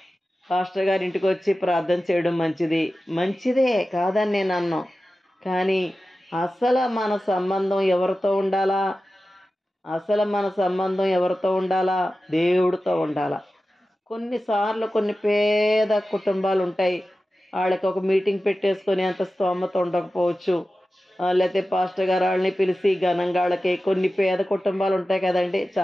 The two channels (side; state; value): both; normal; correlation 0.94